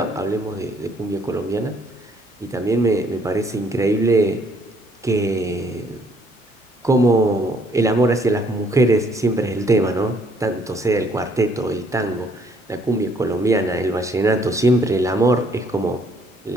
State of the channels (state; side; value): normal; both; correlation 0.65